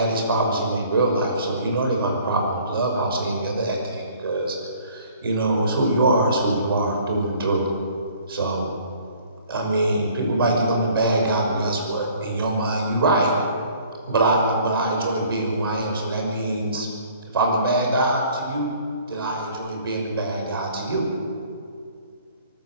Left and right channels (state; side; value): inverted; both; correlation -0.55